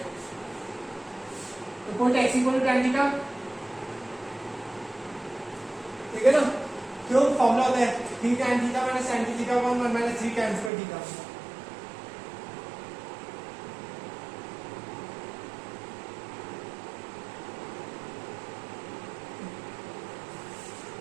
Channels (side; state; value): left; drops out; at 10.7 s